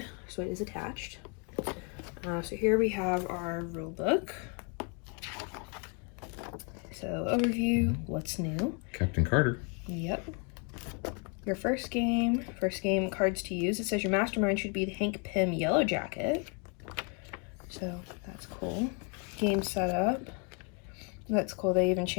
So it is attached. So here we have our rule book. So overview, what's new? Captain Carter. Yep. Your first game cards to use. It says your mastermind should be the Hank Pym Yellow Jacket. So that's cool. Game setup. That's cool. They even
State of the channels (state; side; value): quieter; right; 35.8 dB